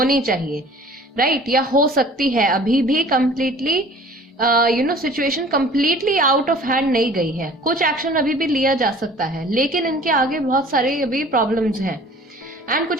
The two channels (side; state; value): both; normal; correlation 0.48